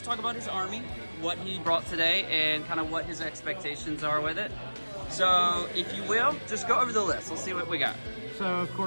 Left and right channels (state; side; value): inverted; both; correlation -1.00